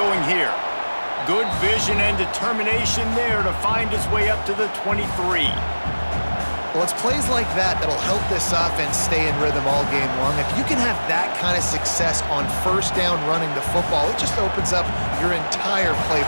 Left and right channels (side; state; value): both; inverted; correlation -1.00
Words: here. Good vision and determination there to find his way up to the 23. Well, it's plays like that that'll help this offense stay in rhythm all game long. If you can have that kind of success on first down running the football, it just opens up your entire